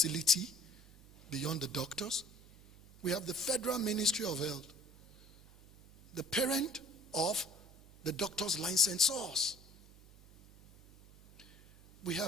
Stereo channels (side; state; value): right; noise; hum, 23 dB below the sound